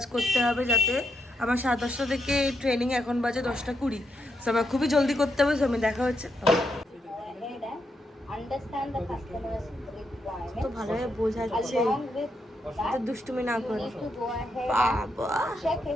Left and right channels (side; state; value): both; normal; correlation 0.81